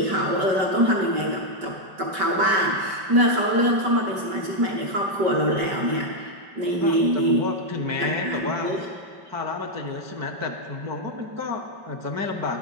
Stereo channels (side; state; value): left; late; 5.2 ms